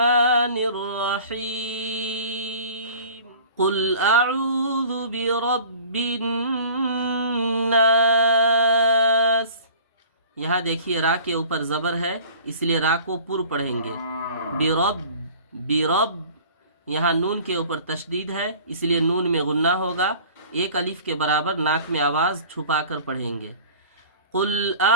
रहीम, कुल अऊज़ु बिरब्बिन नास। यहाँ देखिए रा के ऊपर ज़बर है, इसलिए रा को पुर पढ़ेंगे। बिरब, बिरब, यहाँ नून के ऊपर तशदीद है, इसलिए नून में गुन्ना होगा। 1 अलिफ के बराबर नाक में आवाज़ छुपा कर पढ़ेंगे। कुल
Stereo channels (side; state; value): both; inverted; correlation -0.45